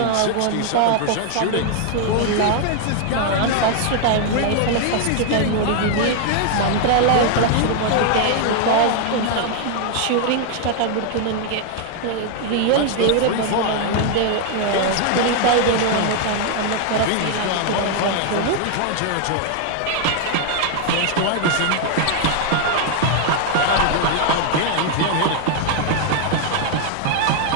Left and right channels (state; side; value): different; both; correlation 0.00